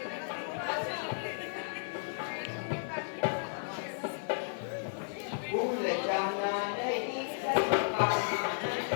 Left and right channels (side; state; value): right; silent; 55 dB below the other